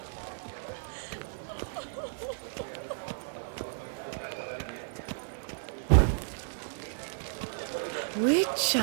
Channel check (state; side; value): silent; left; digital silence